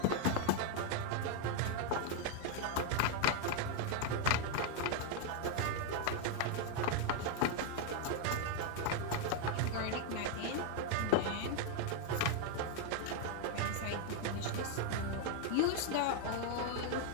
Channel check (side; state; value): both; different; correlation 0.01